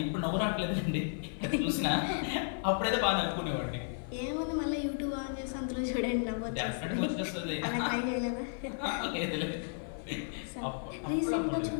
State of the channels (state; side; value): silent; right; 55 dB below the other